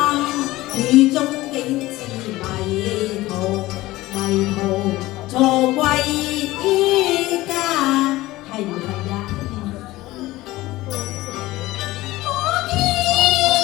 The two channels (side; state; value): right; quieter; 18.1 dB